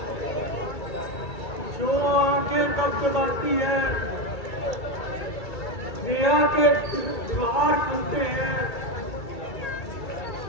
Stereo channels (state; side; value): late; right; 2.3 ms